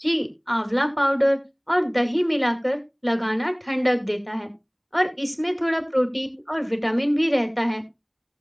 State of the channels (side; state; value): both; identical; correlation 1.00